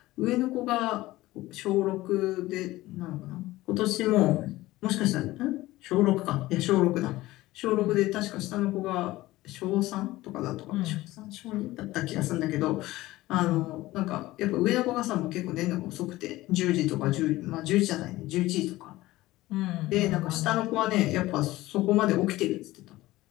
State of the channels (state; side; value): quieter; right; 17.7 dB